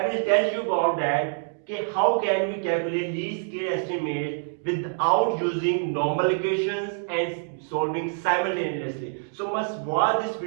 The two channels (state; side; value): silent; left; digital silence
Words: will tell you about that. Okay, how can we calculate least square estimates without using normal equations and solving simultaneously. So must watch this